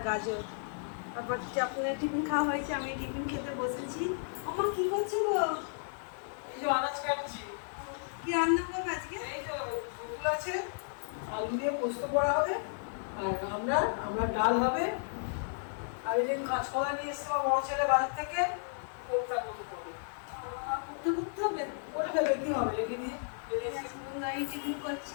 গাজর। তারপর আপনার টিফিন খাওয়া হয়েছে, আমি টিফিন খেতে বসেছি। আমার কি করছো গো? এই যে আনাজ কাটছি। কি রান্না করবে আজকে? এই তো ফুল আছে, আলু দিয়ে পোস্ত করা হবে, আর আমরা ডাল হবে, আর এই যে কাঁচকলা নিয়ে এসছে আমার বড় ছেলে বাজার থেকে, কোপ্তা মতো করবে। করতে হবে? করে ফেলে কি হবে, রেখে দিয়ে এই টিফিন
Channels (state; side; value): silent; right; digital silence